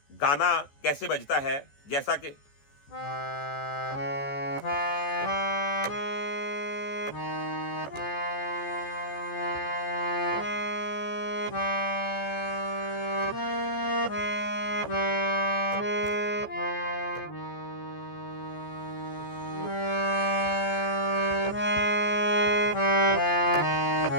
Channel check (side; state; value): right; late; 14 ms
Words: गाना कैसे बजता है, जैसा कि